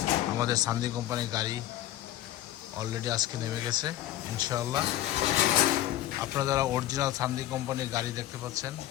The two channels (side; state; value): right; quieter; 14.0 dB